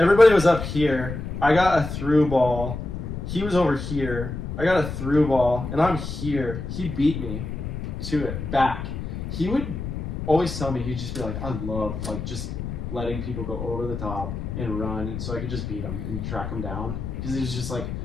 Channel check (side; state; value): left; noise; rumble, 6 dB below the sound